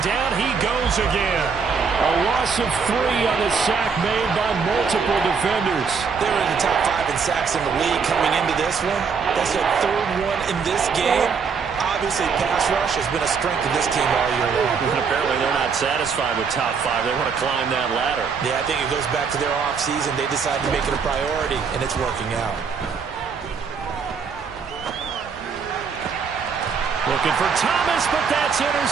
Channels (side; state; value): left; quieter; 5.7 dB